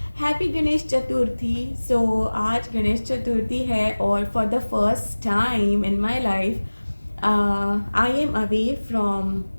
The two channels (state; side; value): inverted; both; correlation -1.00